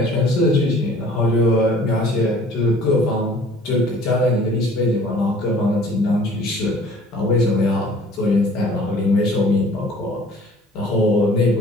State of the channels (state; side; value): normal; both; correlation 0.51